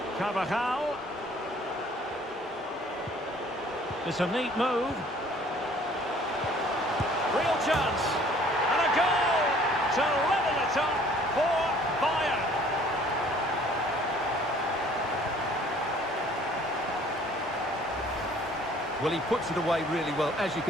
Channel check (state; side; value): normal; both; correlation 0.55